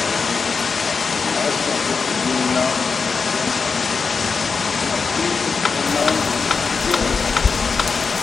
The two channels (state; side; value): quieter; right; 5.1 dB